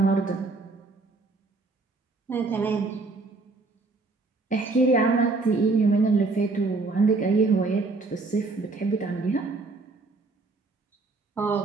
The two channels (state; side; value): quieter; left; 3.7 dB